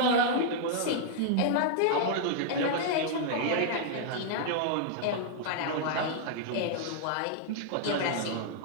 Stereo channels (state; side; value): different; both; correlation -0.01